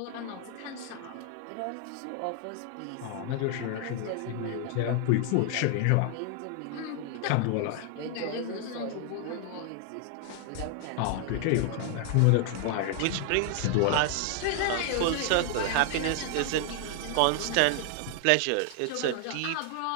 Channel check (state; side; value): different; both; correlation 0.00